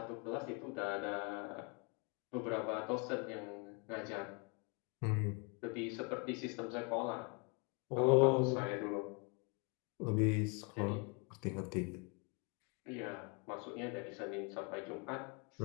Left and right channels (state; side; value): quieter; right; 33.7 dB